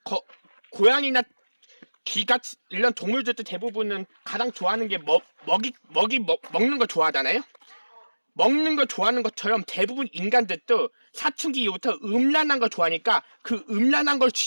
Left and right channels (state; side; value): inverted; both; correlation -1.00